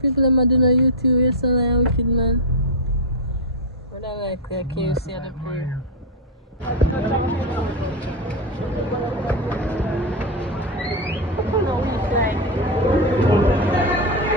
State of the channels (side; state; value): both; normal; correlation 0.03